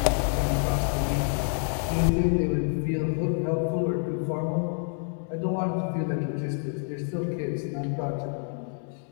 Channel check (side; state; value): right; silent; 60 dB below the other